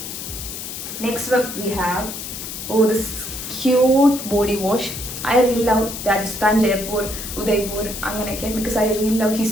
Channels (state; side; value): noise; left; hiss, 8 dB below the sound